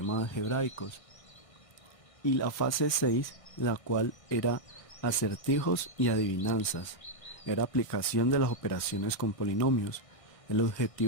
algebraicos. Y la fase 6, la cual era acertijos y adivinanzas, era aplicación de las operaciones con polinomios. El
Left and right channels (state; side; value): late; right; 1.6 ms